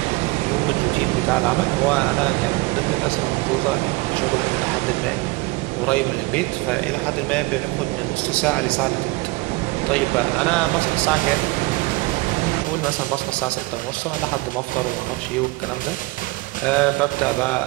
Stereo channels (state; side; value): quieter; left; 23.1 dB